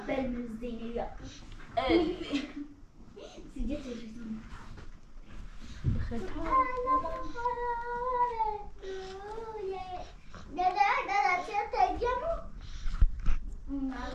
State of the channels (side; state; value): both; identical; correlation 1.00